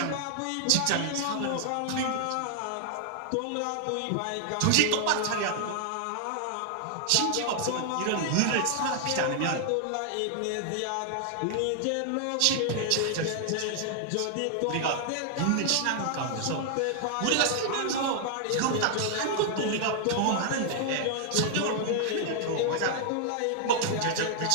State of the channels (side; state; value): both; different; correlation 0.00